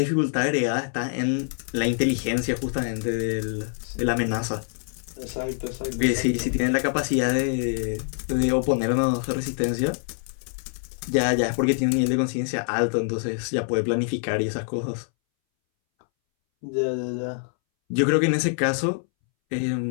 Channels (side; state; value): right; silent; 62 dB below the other